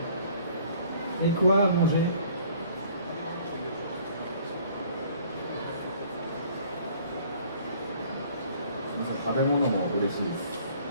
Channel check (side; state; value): both; inverted; correlation -0.55